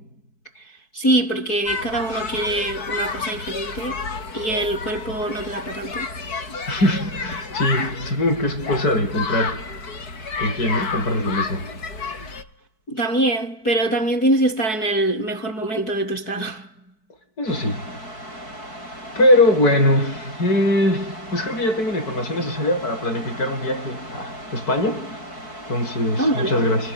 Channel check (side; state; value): right; late; 4.6 ms